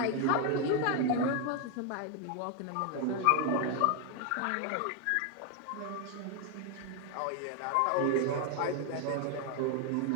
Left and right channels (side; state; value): both; different; correlation 0.01